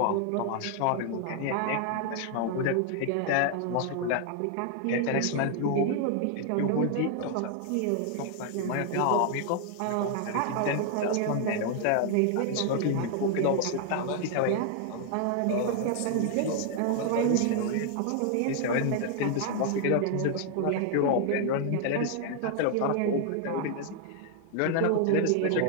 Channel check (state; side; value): different; both; correlation 0.00